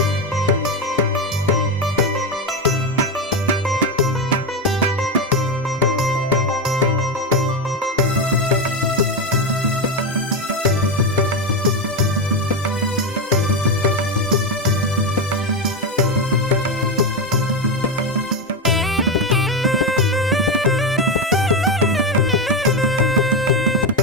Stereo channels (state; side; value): normal; both; correlation 0.12